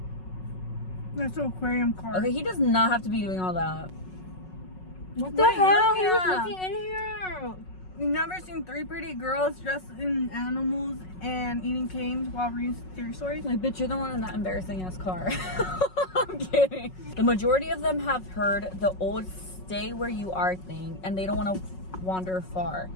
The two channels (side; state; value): right; late; 5.4 ms